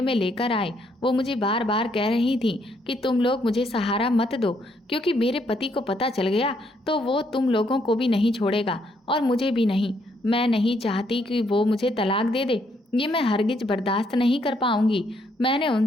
में लेकर आए। वो मुझे बार बार कह रही थी कि तुम लोग मुझे सहारा मत दो, क्योंकि मेरे पति को पता चल गया तो वो तुम लोगों को भी नहीं छोड़ेगा और मुझे भी नहीं। मैं नहीं चाहती कि वो मुझे तलाक दे दे, ये मैं हरगिज बर्दाश्त नहीं कर पाऊंगी। मैंने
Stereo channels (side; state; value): both; normal; correlation 0.72